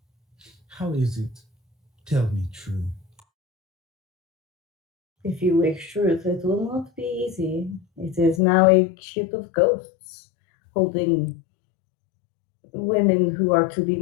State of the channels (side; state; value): right; drops out; at 8.4 s